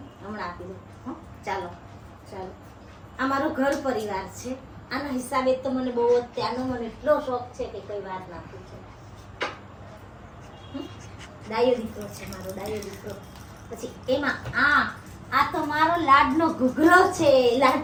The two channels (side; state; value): both; identical; correlation 1.00